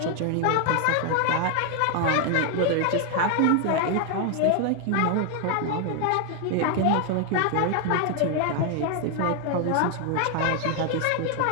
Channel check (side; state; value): both; different; correlation 0.00